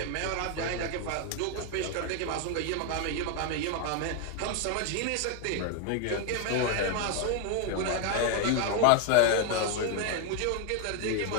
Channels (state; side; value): different; both; correlation 0.01